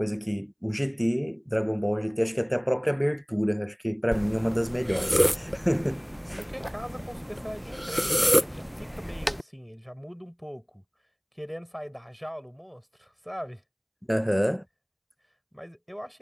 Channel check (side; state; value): both; identical; correlation 1.00